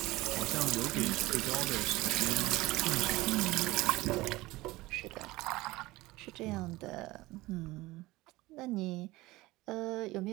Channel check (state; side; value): quieter; left; 19.5 dB